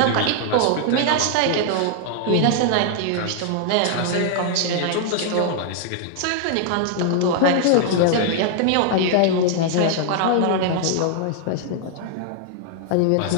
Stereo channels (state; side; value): different; both; correlation -0.01